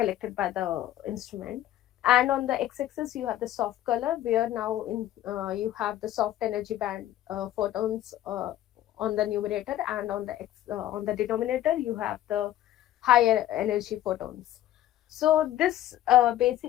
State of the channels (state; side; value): quieter; right; 13.1 dB